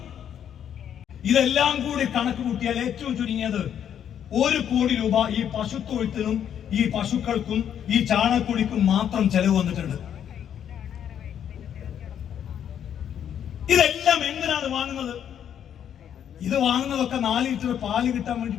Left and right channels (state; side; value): quieter; right; 9.3 dB